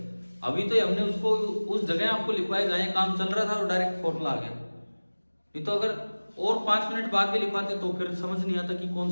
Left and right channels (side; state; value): both; inverted; correlation -1.00